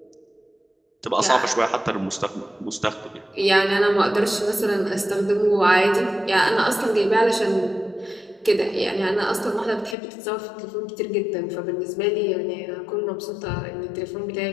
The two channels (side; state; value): right; drops out; at 10.0 s